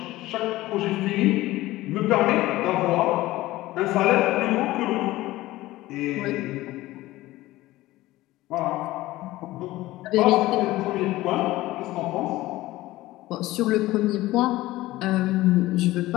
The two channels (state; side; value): quieter; right; 17.4 dB